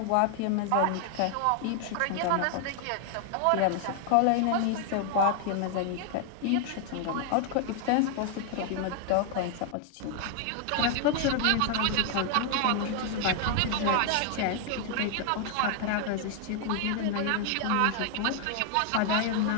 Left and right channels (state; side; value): different; both; correlation 0.00